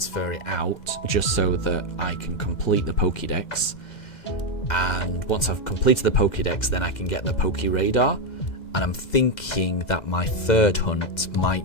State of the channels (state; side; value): late; right; 2.0 ms